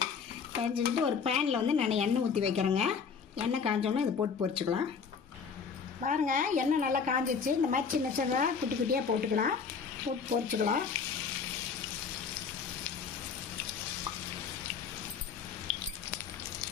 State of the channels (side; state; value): right; quieter; 6.0 dB